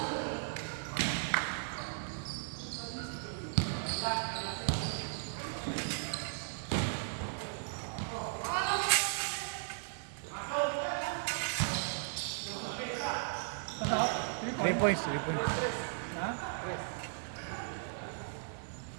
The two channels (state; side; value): silent; left; 53 dB below the other